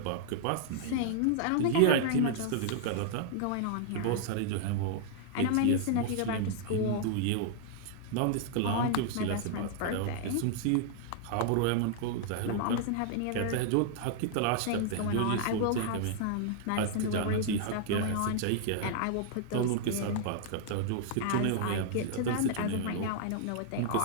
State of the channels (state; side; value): different; both; correlation -0.01